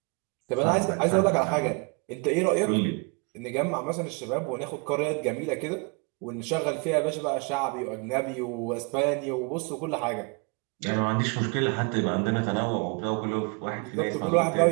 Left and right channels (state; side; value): quieter; left; 32.9 dB